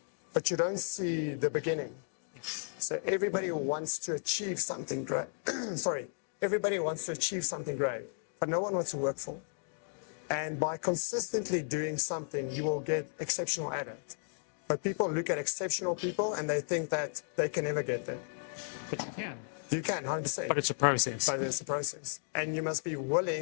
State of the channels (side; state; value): right; silent; digital silence